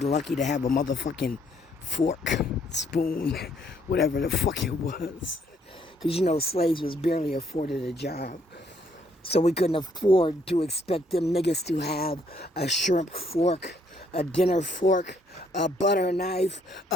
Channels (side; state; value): both; normal; correlation 0.68